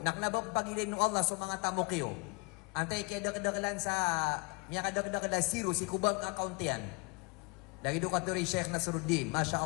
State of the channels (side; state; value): right; quieter; 28.9 dB